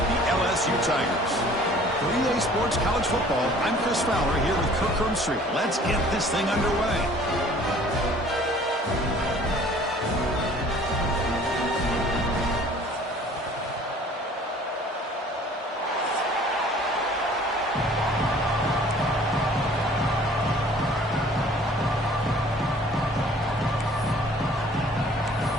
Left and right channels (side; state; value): both; normal; correlation 0.52